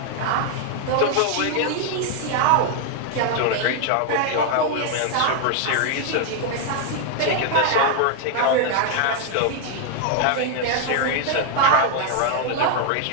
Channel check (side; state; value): both; different; correlation 0.00